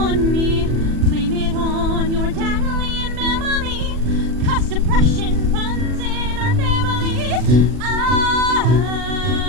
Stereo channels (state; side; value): late; left; 40 ms